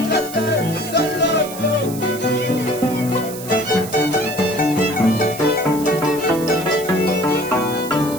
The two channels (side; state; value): right; noise; hiss, 13 dB below the sound